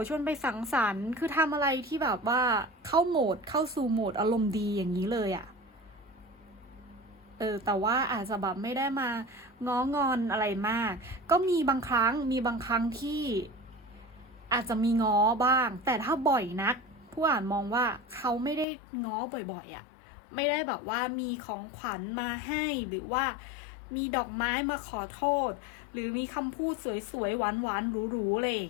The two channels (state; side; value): drops out; right; at 18.7 s